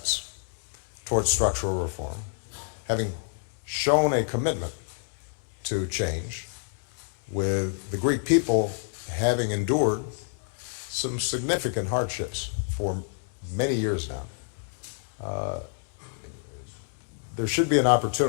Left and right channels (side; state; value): right; silent; digital silence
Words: towards structural reform, having shown a commitment to change, with the Greek people having endured some significant hardships for many years now, there should be an